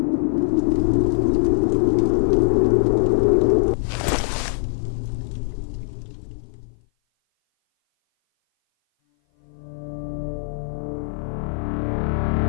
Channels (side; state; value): right; silent; 57 dB below the other